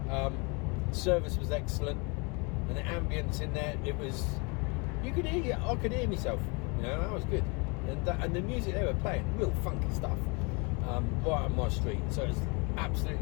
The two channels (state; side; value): quieter; right; 30.8 dB